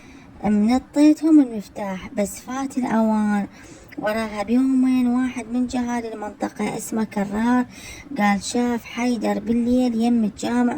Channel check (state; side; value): identical; both; correlation 1.00